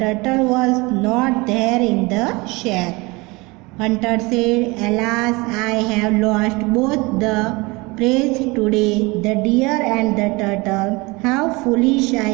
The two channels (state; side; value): quieter; left; 24.6 dB